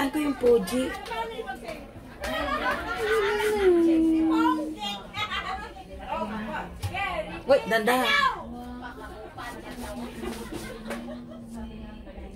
ko yung Fuji. Wait, dandahan.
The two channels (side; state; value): both; identical; correlation 1.00